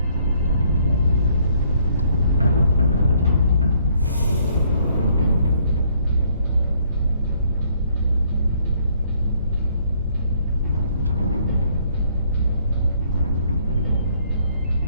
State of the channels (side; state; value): both; inverted; correlation -0.66